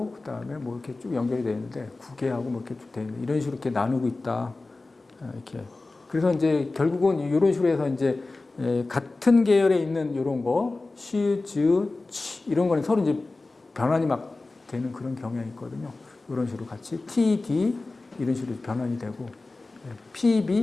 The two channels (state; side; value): quieter; right; 3.3 dB